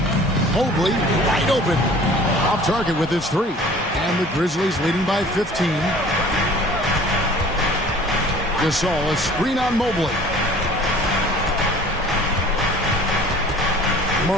Mobley wide open. Off target with his 3. And the Grizzlies leading by 15. Gasol, a screen on Mobley.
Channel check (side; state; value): both; normal; correlation 0.48